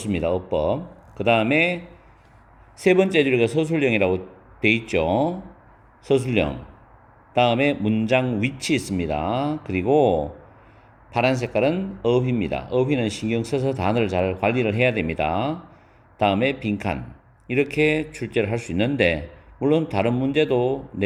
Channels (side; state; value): both; identical; correlation 1.00